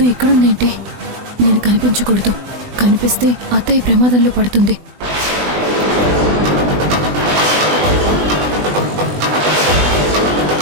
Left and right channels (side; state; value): left; late; 20 ms